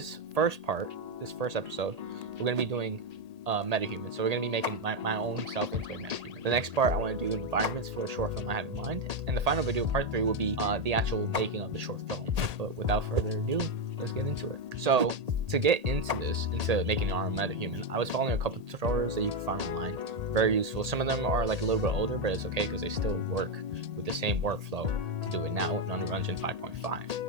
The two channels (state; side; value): late; left; 1.8 ms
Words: first episode, we're going to be doing Metahuman. So we're going to be making my own self into a Metahuman. The next part, I want to do environments for a short film I have in mind. And the final video, part 3, will be the actual making of the short film. But without further ado, let's get into it. So to get into making our own Metahuman, I was following a couple of tutorials that you can find online. Very useful. Some of them are like a little bit older, but it's okay because they still work with the same workflow to do it now in Unreal Engine